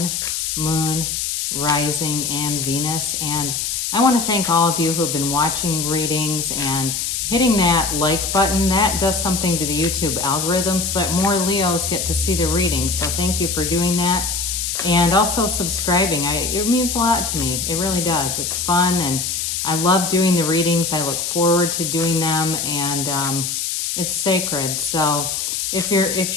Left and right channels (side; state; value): left; noise; hiss, 2 dB below the sound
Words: Moon, Rising, and Venus. And I want to thank all of you who have been watching readings and hitting that like button. That does something to the YouTube algorithm so that more Leos get to see the reading. So thank you for doing that. And also subscribing. It means a lot to me. It really does. It's fun and I love doing the readings. I look forward to doing them, and it's sacred. So if